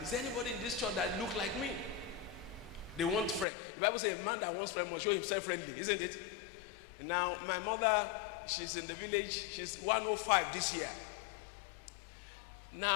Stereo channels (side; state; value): right; drops out; at 3.5 s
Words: is there anybody in this church that look like me? They want friend. The Bible says a man that wants friend must show himself friendly, isn't it? Now, my mother, she's in the village. She's 105 this year.